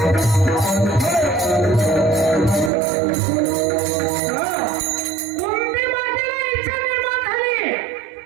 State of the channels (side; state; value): left; drops out; at 2.7 s